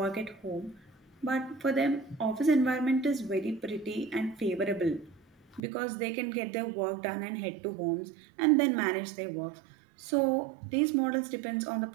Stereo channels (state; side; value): drops out; left; at 5.6 s